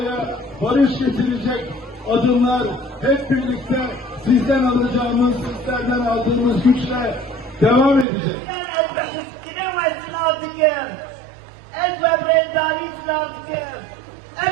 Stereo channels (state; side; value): drops out; left; at 8.1 s